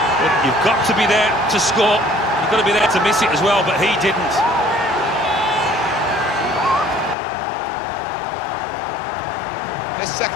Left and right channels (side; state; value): right; drops out; at 7.2 s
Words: but you've got to be there to score. You've got to be there to miss it as well, but he didn't. This